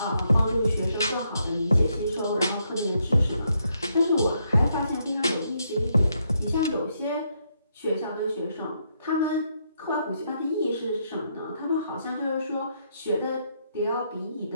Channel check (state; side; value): inverted; both; correlation -0.77